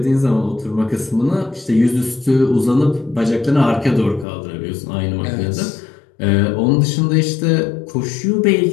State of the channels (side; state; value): right; drops out; at 4.2 s